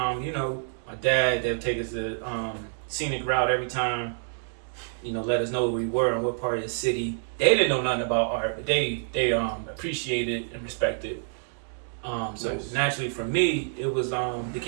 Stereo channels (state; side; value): silent; left; digital silence